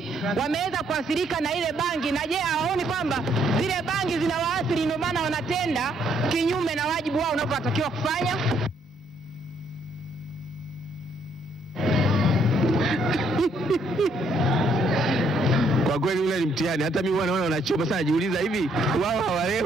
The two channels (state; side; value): normal; both; correlation 0.69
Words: wameweza kuathirika na ile bangi, na je, hawaoni kwamba zile bangi zinawaathiri ndio maana wanatenda kinyume na wajibu wao unapotakiwa kufanya? Kwa kweli ule ni mtihani. Hata mimi naona wanachoma sana, jiuliza hivi wao